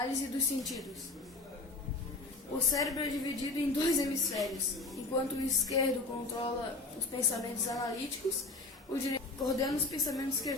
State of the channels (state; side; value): quieter; right; 3.2 dB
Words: dos sentidos. O cérebro é dividido em dois hemisférios. Enquanto o esquerdo controla os pensamentos analíticos, o direito coordena os pensamentos